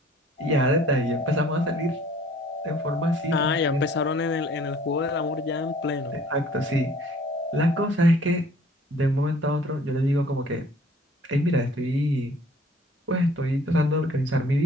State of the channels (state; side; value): normal; both; correlation 0.54